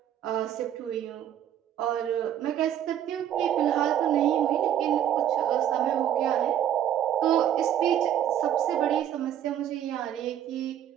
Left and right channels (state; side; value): quieter; left; 10.5 dB